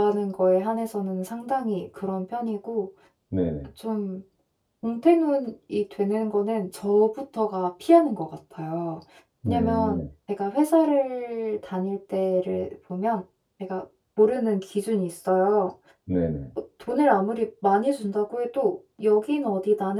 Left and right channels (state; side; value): identical; both; correlation 1.00